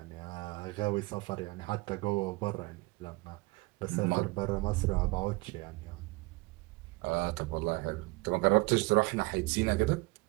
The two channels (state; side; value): quieter; left; 24.1 dB